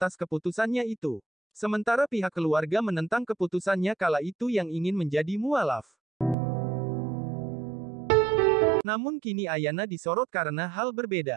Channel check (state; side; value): drops out; left; at 6.4 s